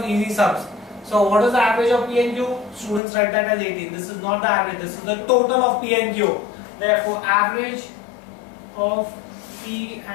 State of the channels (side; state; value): right; drops out; at 3.0 s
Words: easy sums. So what is the average of P and Q? Students write that as 18. This is not the average. This is the total of P and Q. Therefore, average of P